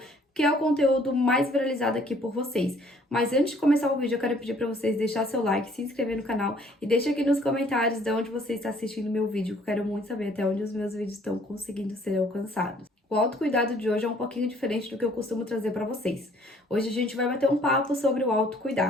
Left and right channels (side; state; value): both; normal; correlation 0.60